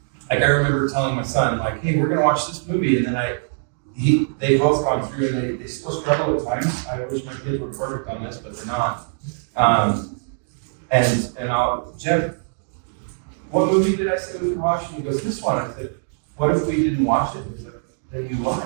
like I remember telling my son, like, hey, we're gonna watch this movie, and then they've both gone through, and they still struggle at times. I wish my kids were perfect on this, but they're not. And I'll, Jeff, what movie did I say we could watch? And he goes, this one. I said, what if we didn't watch it? He's like, then you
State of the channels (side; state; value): left; silent; digital silence